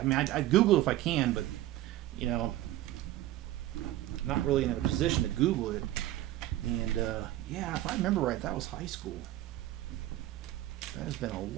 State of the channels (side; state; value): left; quieter; 14.9 dB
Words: mean, I'd Google if I can, but, you know, I'm not really in a position to Google it. And, yeah, if I remember right, that was high school. That has been a